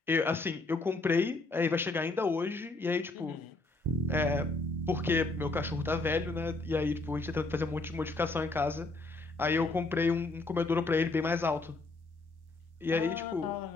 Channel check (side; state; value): right; quieter; 3.2 dB